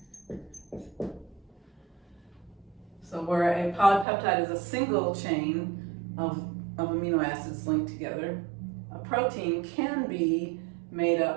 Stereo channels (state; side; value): drops out; left; at 4.0 s